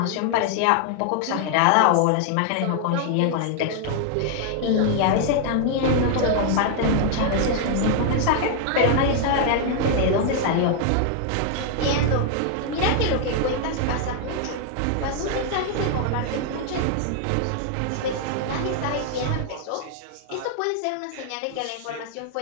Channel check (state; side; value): different; both; correlation 0.00